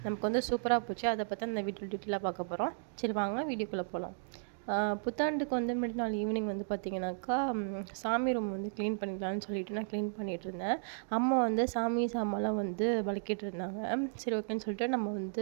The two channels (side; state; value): left; silent; digital silence